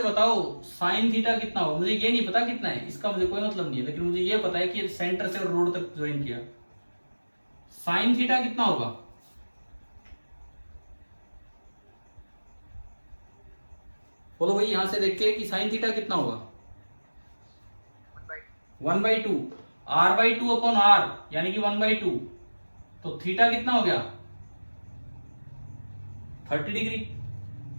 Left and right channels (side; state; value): both; inverted; correlation -1.00